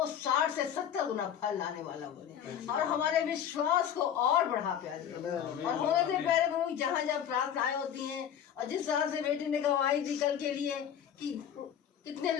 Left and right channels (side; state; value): right; quieter; 9.3 dB